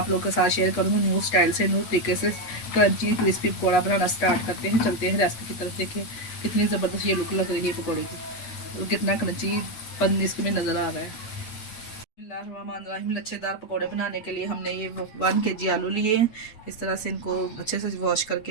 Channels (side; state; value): right; late; 8.5 ms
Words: लोगों के साथ शेयर करूँगी। न्यू स्टाइल से, न्यू तरीके से क्रंची क्रिस्पी पकौड़ा बनाना स्टार्ट करते हैं। चलते हैं रेसिपी की तरफ। देखें कितनी ज़बरदस्त ये लुक लग रही है पकौड़े की और कितना क्रंची पन इसमें नज़र आ रहा है। लच्छेदार पकौड़े बनाने के लिए हमने ये 1 kg आलू लिए हैं। इस तरह से इनको अच्छे से वॉश